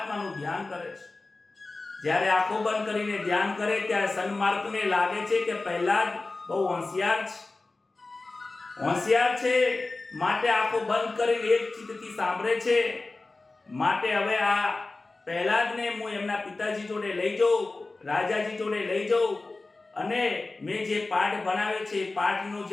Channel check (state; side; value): quieter; right; 3.4 dB